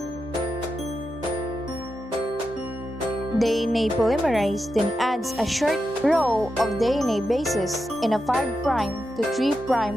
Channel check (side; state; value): both; normal; correlation 0.88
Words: DNA polymerase then adds a short row of DNA bases in a 5' to 3'